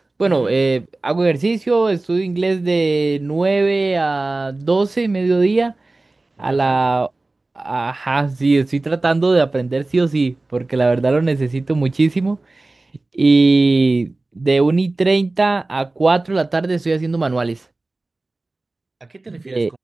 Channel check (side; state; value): left; quieter; 3.1 dB